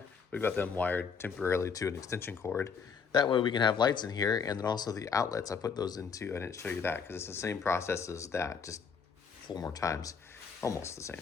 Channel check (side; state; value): right; quieter; 6.0 dB